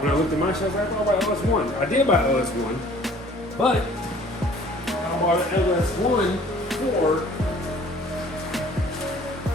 when I looked at my shit. I was like, I thought about LS1. I did buy LS1, but I bought an LS1 for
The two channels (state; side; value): normal; both; correlation 0.53